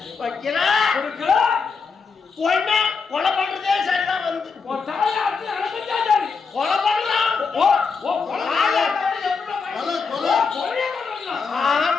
வைக்கலாம் பொண்ணு கொலை பண்றதே சரிதான் வந்து கொலை பண்ணலாம்.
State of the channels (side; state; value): right; quieter; 5.1 dB